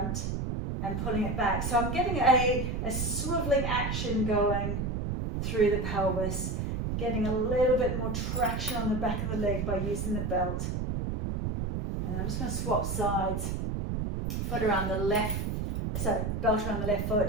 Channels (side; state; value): right; noise; rumble, 1 dB below the sound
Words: and pulling it back. So I'm getting a swiveling action going through the pelvis, getting a little bit more traction on the back of the leg by using the belt. And I'm just going to swap sides, foot around the left, so belt around the left